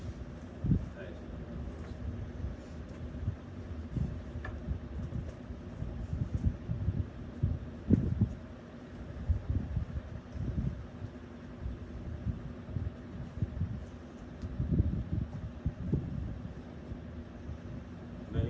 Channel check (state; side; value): identical; both; correlation 1.00